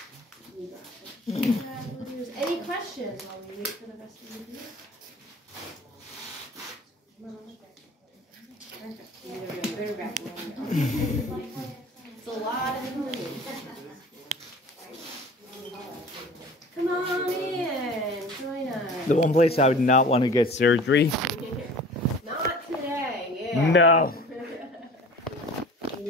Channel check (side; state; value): both; normal; correlation 0.43